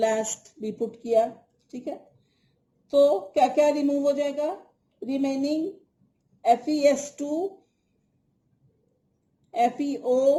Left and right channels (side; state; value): both; identical; correlation 1.00